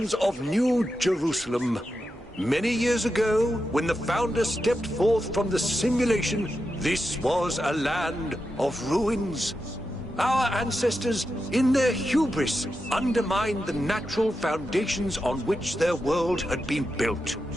of New Jerusalem, many years ago, when the founder stepped forth from the simulation, this was a land of ruins. Our ancestors, in their hubris, undermined the natural foundations on which their world had been built.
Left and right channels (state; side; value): normal; both; correlation 0.88